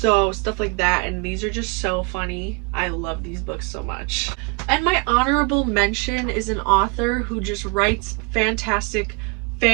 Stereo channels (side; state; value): left; quieter; 30.4 dB